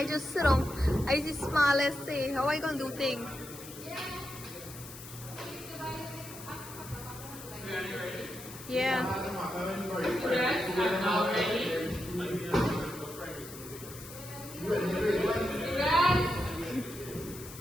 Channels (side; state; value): left; noise; hiss, 14 dB below the sound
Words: just sit on. I just smile and say, how are you gonna do things? Yeah. Students are now ready. Students,